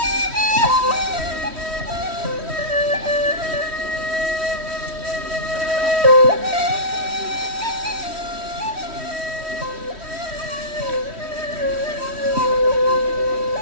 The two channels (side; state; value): left; late; 3.1 ms